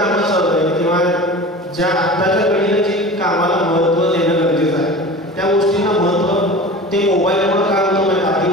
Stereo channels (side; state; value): both; normal; correlation 0.36